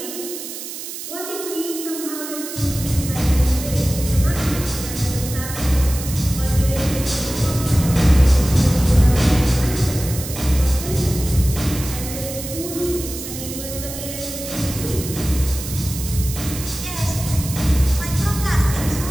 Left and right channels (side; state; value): right; noise; hiss, 9 dB below the sound